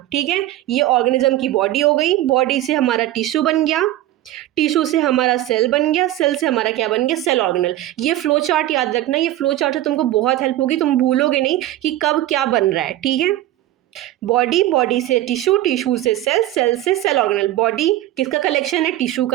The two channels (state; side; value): quieter; left; 14.4 dB